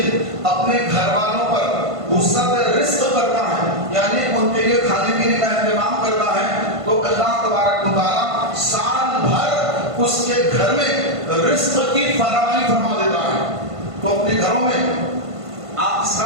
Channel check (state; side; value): late; left; 1.5 ms